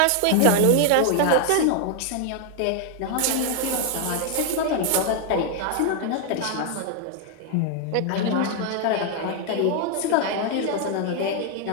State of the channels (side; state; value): both; different; correlation 0.00